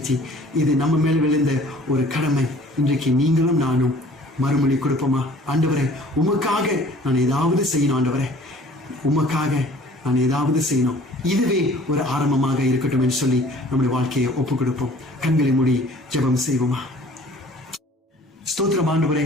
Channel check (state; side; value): normal; both; correlation 0.51